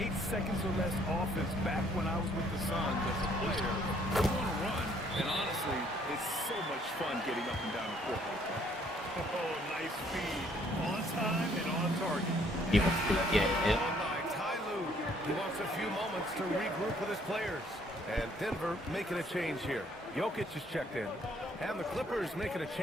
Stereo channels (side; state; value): both; normal; correlation 0.64